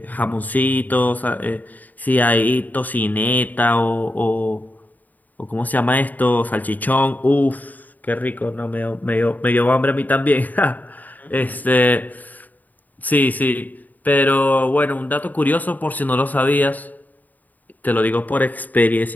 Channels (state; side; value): late; right; 0.082 ms